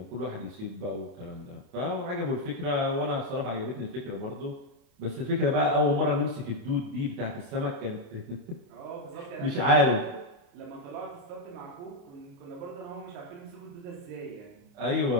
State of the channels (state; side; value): late; left; 28 ms